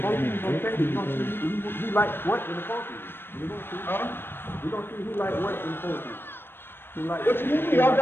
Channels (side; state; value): right; late; 0.10 ms